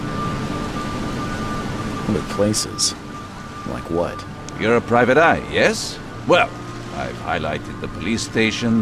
Other places? Like what? You're a private eye, yes? Well, I've highlighted the police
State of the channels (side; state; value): both; identical; correlation 1.00